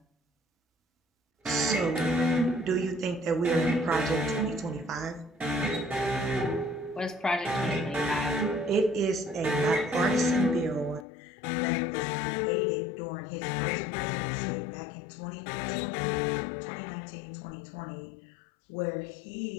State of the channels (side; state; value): right; drops out; at 11.1 s